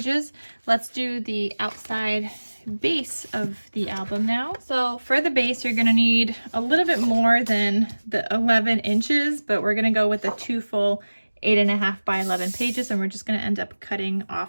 Let's do the outside base of the album now. So for the base, you're gonna need a little bit more than the 11 inches, but we're gonna go with the 2 full 8.5 by 11 pages, and we're just gonna end up cutting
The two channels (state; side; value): inverted; both; correlation -1.00